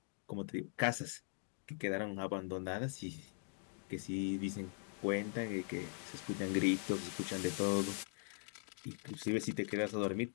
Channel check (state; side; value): silent; right; 50 dB below the other